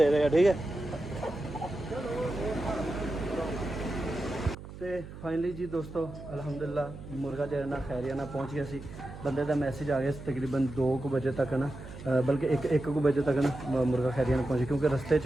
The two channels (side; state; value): right; noise; hum, 13 dB below the sound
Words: دے گا, ٹھیک ہے. تو فائنلی جی دوستو الحمدللہ مرغا جو ہے نا خیریہ نہ پہنچ گیا سی. بندے دا میسج آ گیا تقریباً 2 بجے تک نا, بلکہ 1 بجے تک نا مرغا خیریہ نہ پہنچے کیونکہ رستے